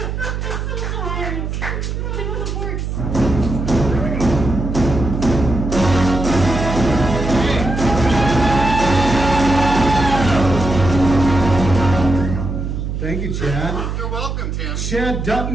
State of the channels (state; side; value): noise; right; hum, 4 dB below the sound